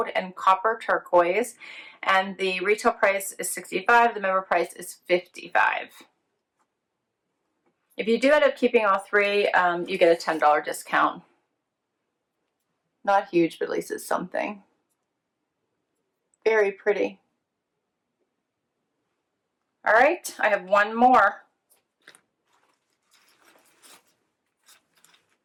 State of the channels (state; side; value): identical; both; correlation 1.00